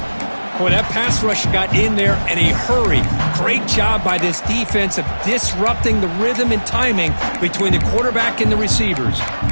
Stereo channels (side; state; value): both; inverted; correlation -1.00